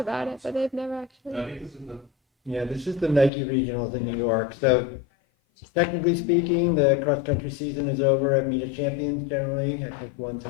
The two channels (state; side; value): drops out; right; at 3.3 s